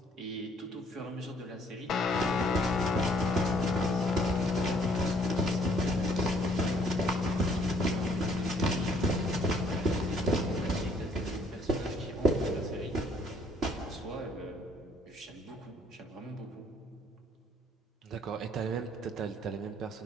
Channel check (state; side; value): normal; both; correlation 0.63